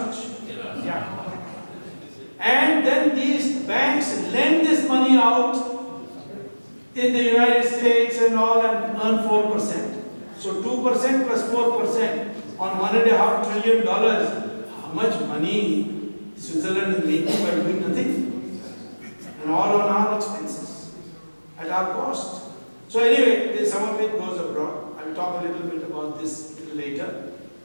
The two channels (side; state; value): both; inverted; correlation -1.00